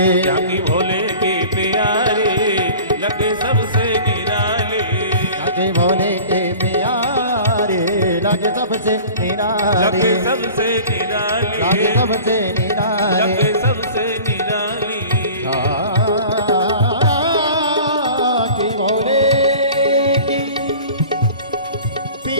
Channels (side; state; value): both; inverted; correlation -0.42